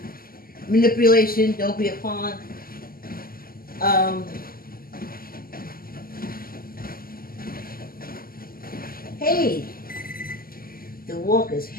manipulation, don't be a pawn. Hey, the walk is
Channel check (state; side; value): late; right; 0.42 ms